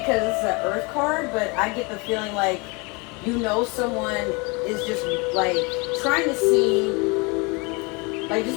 it's an Earth card, but I get the feeling like, you know, someone is just, like, trying to see, like,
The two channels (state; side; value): quieter; right; 29.0 dB